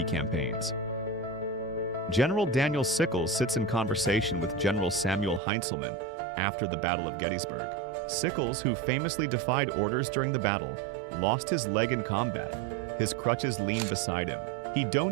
campaigns. General Daniel Sickls sits in conversation with General Samuel Heintzelman after the Battle of Gettysburg. Sickls, who famously defied orders during the battle, lost his leg in combat. His crutches leaned beside him. He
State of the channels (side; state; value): left; drops out; at 5.4 s